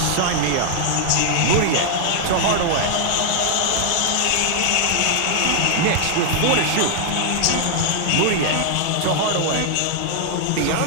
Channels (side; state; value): both; different; correlation 0.00